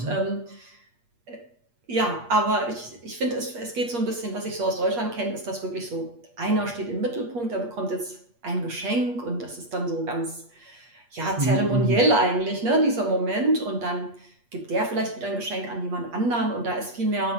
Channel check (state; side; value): late; left; 8.4 ms